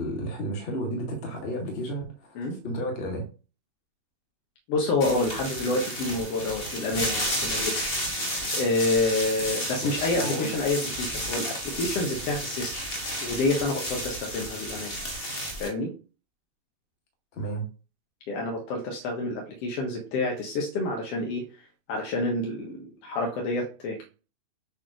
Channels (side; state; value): right; late; 2.7 ms